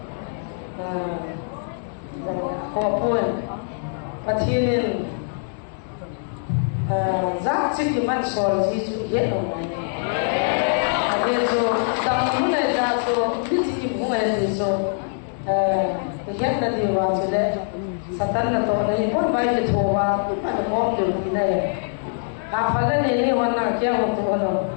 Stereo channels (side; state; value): right; silent; digital silence